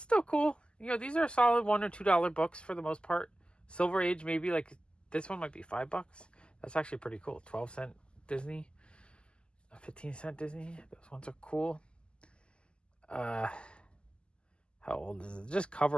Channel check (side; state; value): right; late; 0.050 ms